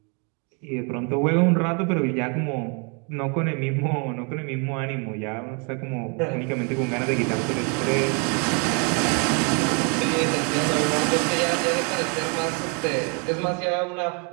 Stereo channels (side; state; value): left; quieter; 35.7 dB